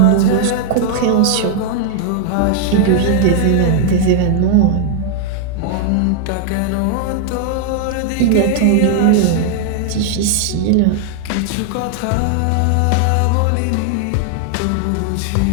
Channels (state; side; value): different; both; correlation -0.01